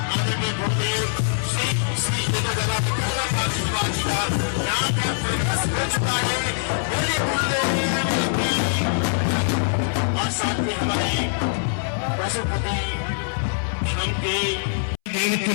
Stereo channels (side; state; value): right; silent; 63 dB below the other